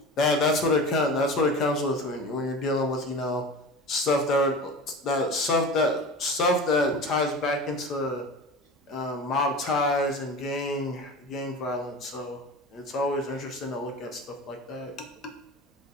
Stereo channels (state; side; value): normal; both; correlation 0.33